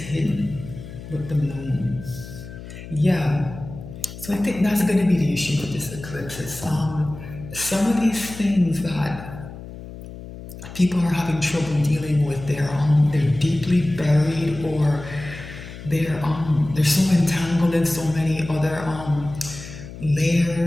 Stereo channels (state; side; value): noise; left; hum, 13 dB below the sound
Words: with the moon. Yeah. So I think that's going to be the issue with this eclipse. It's some of these things that people are having trouble dealing with. They're deeply buried, or they're so entangled in so many other